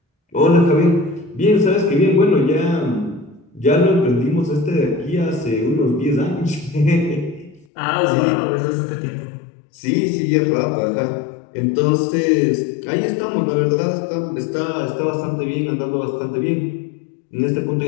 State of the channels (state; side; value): drops out; right; at 7.7 s